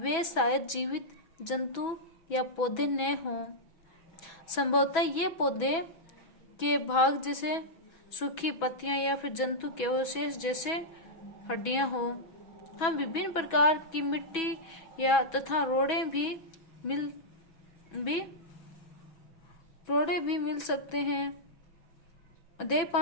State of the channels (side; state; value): right; late; 6.1 ms